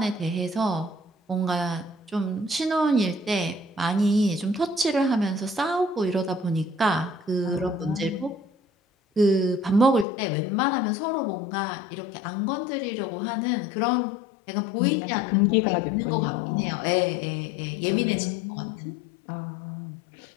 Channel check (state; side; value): drops out; right; at 10.1 s